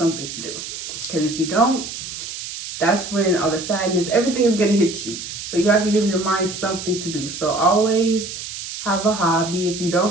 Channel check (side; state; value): right; noise; hiss, 8 dB below the sound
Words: to do, because if you don't, that's when all the sadness, everything is going to hit you. So you have to give your mind something to do. So always have a hobby. If you